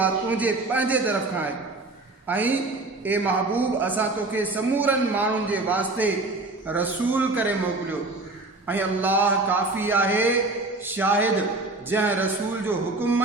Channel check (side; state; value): left; quieter; 3.1 dB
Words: तुंहिंजे पंहिंजे तरफ़ खां आहे। ऐं ए महबूब, असां तोखे समूरनि माण्हुनि जे वास्ते रसूल करे मोकिलियो, ऐं अल्लाह काफ़ी आहे शाहिद। जंहिं रसूल जो हुकुम